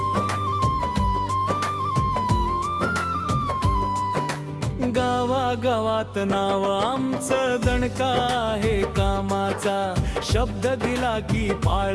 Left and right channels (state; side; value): identical; both; correlation 1.00